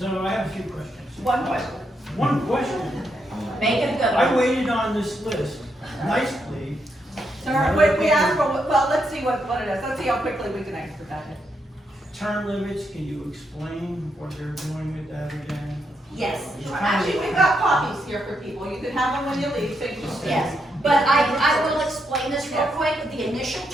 I have a few questions. One question. One question, Make it a good I one. waited on this list nicely. Sir, we asked for, well, let's see what it is. Let's see how quickly we can expedite it. Term limits, can you explain what they're doing with that again? Yes, Actually, we've got copies here for people. You can have them when you leave, so you just. yes. But I will explain this real quick. The initial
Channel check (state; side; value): normal; both; correlation 0.80